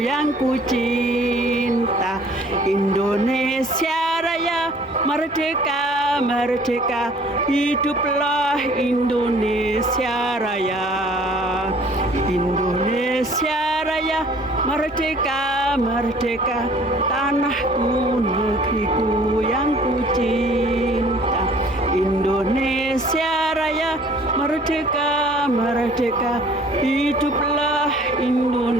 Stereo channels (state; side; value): normal; both; correlation 0.53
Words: ku cinta. Indonesia Raya, merdeka, merdeka, hiduplah Indonesia Raya. Indonesia Raya, merdeka, merdeka, tanahku, negeriku yang ku cinta. Indonesia Raya, merdeka, merdeka, hiduplah